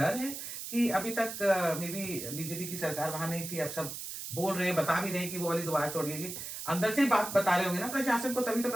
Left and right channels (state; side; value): noise; right; hiss, 7 dB below the sound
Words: है कि अभी तक मे बी बीजेपी की सरकार वहां नहीं थी, अब सब बोल रहे हैं, बता भी रहे हैं कि वो वाली दीवार तोड़िएगी, अंदर से ही बात बता रहे होंगे ना प्रशासन को, तभी तो